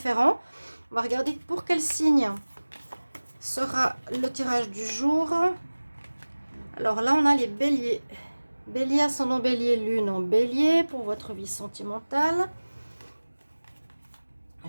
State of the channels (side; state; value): both; inverted; correlation -1.00